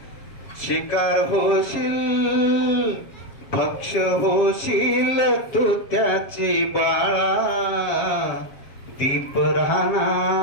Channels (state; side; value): late; right; 7.1 ms